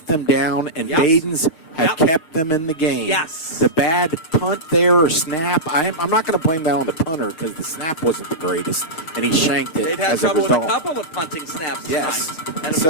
them down, and Yep. Baden's have Yep. kept them in the game. Yes. The bad punt there or snap, I'm not going to blame that on the punter because the snap wasn't the greatest, and he shanked it They've had as a trouble with a result. couple of punting snaps Yes. tonight. And, of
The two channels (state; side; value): late; right; 6.6 ms